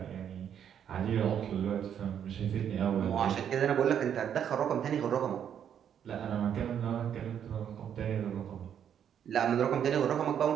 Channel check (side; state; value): left; quieter; 8.9 dB